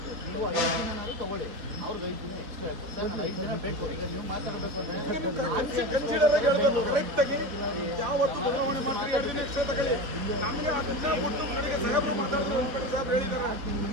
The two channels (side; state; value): left; late; 3.8 ms